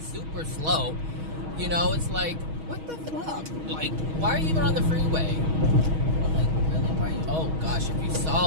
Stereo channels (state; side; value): late; left; 6.3 ms